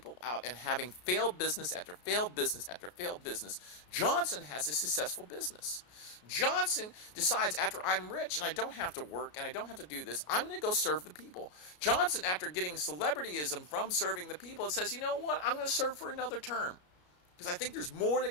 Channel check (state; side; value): late; right; 33 ms